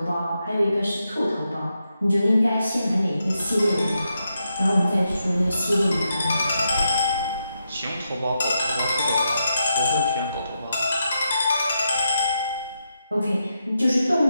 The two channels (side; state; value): both; inverted; correlation -0.84